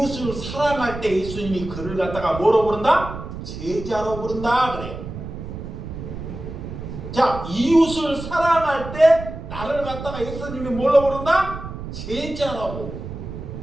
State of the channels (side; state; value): right; noise; rumble, 9 dB below the sound